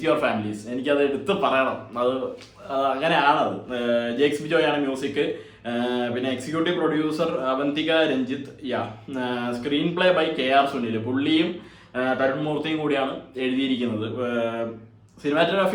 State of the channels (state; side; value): identical; both; correlation 1.00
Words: യുവർ ഫാമിലീസ്. എനിക്കത് എടുത്ത് പറയണം. അത് അങ്ങനെയാണത്. ജേക്സ് ബിജോയ് ആണ് മ്യൂസിക്. പിന്നെ executive producer Avanthika Ranjith. Screen play by KR Sunil. പുള്ളിയും തരുൺ മൂർത്തിയും കൂടിയാണ് എഴുതിയിരിക്കുന്നത്.